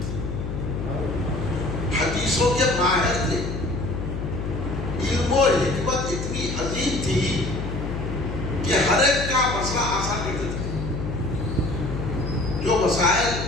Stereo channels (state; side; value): noise; left; hum, 4 dB below the sound